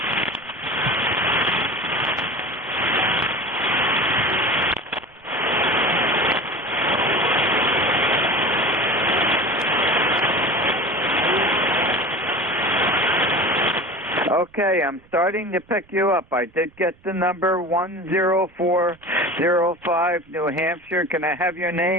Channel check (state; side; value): noise; right; rumble, 29 dB below the sound